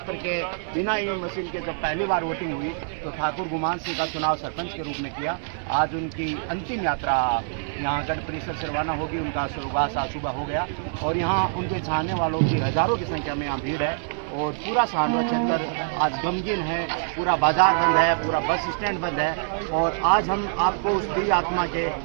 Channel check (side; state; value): left; silent; digital silence